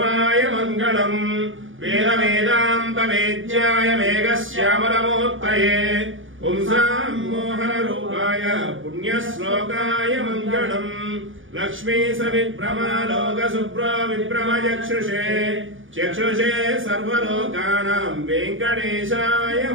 मङ्गलम् वेद वेदान्त वेद्याय मेघश्यामलमूर्तये पुंसां मोहनरूपाय पुण्यश्लोकाय मङ्गलम् लक्ष्मी सविभ्रमालोकशुभ्रो विभ्रमचक्षुषे चक्षुषे सर्वलोकानां वेङ्कटेशाय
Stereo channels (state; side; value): late; left; 0.57 ms